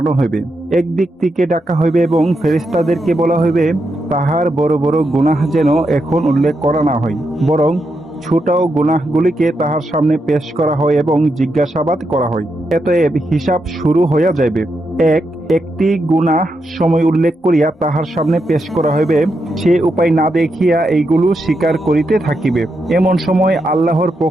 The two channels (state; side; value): normal; both; correlation 0.83